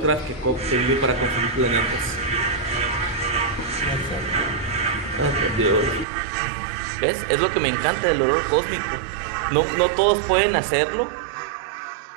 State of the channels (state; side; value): drops out; left; at 6.1 s